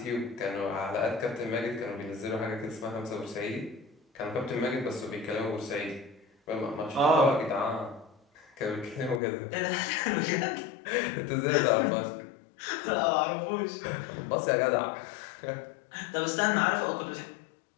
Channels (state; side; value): drops out; right; at 9.2 s